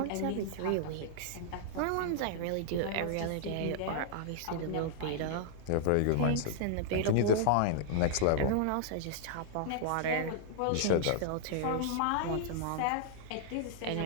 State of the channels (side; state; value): both; different; correlation -0.01